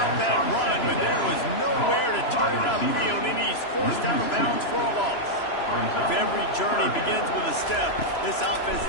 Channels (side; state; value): right; late; 3.0 ms